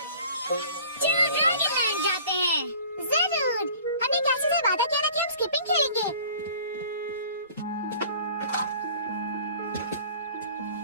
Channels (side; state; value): both; inverted; correlation -0.48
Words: चलो ड्रैगन लैंड जाते हैं। जरूर। हमने कैसे से वादा किया था कि हम स्किपिंग खेलेंगे।